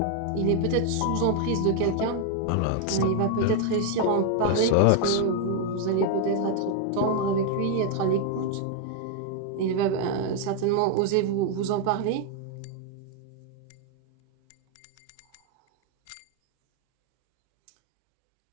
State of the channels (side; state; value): both; different; correlation 0.00